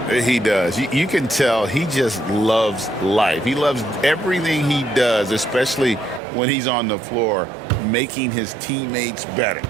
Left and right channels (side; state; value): left; drops out; at 6.2 s